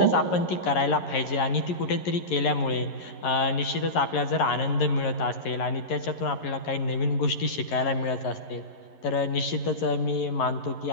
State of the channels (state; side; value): late; right; 11 ms